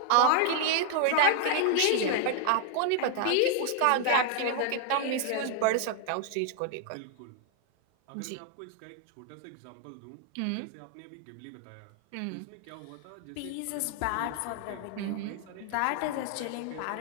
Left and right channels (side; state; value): both; different; correlation 0.00